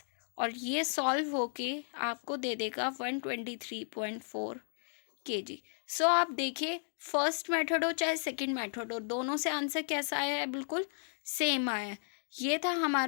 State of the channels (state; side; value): silent; right; digital silence